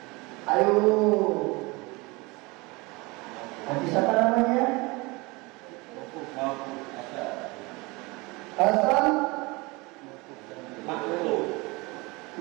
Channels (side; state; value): left; quieter; 25.0 dB